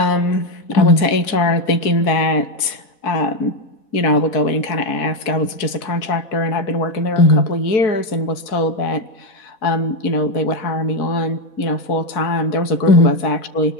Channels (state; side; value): late; right; 4.6 ms